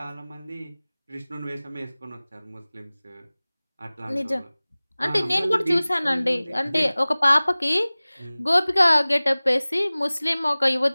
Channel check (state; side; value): inverted; both; correlation -0.99